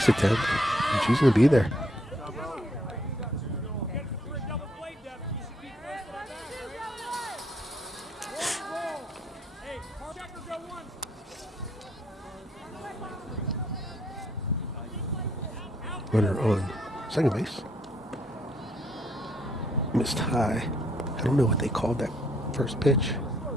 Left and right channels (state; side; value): normal; both; correlation 0.70